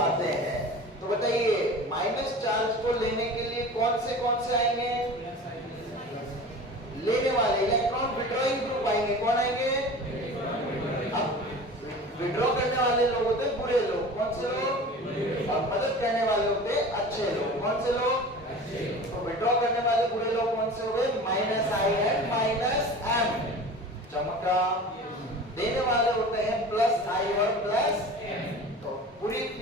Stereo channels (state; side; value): normal; both; correlation 0.37